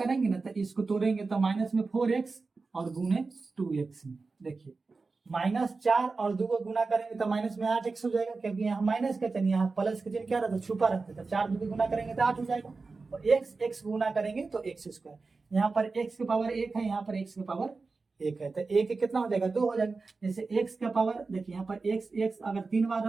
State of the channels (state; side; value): quieter; left; 4.1 dB